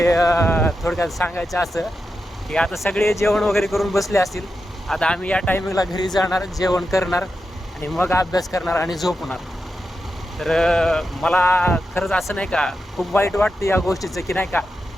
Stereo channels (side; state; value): both; normal; correlation 0.88